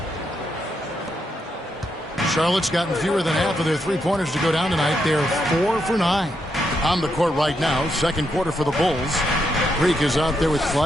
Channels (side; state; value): both; normal; correlation 0.81